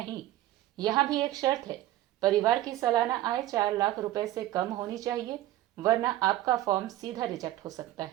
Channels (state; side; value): quieter; left; 14.9 dB